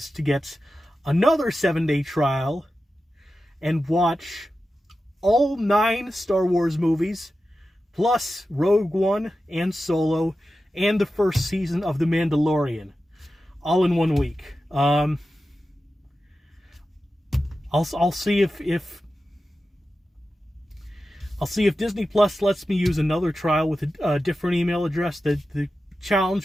to get another 7-day trial and watch all 9 Star Wars movies, plus Rogue One and Solo and the first season of The Mandalorian, all in 1 week. I'll see if Disney Plus lets me use another trial with a different email address. The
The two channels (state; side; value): normal; both; correlation 0.92